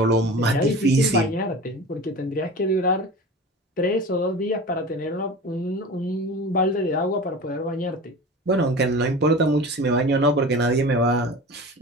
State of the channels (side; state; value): both; normal; correlation 0.35